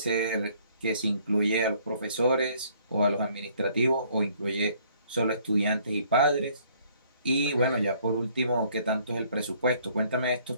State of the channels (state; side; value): inverted; both; correlation -0.62